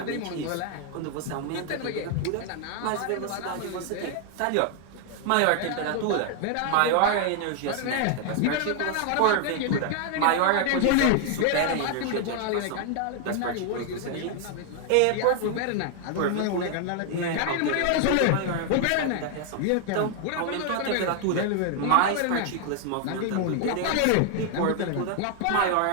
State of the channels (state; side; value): different; both; correlation 0.00